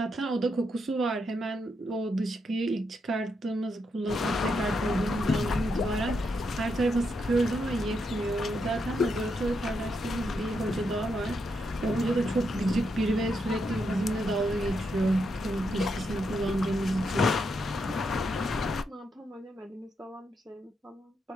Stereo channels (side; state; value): both; normal; correlation 0.81